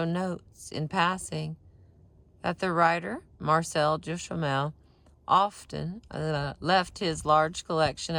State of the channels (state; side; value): identical; both; correlation 1.00